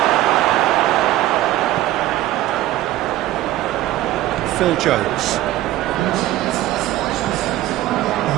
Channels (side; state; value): left; quieter; 15.1 dB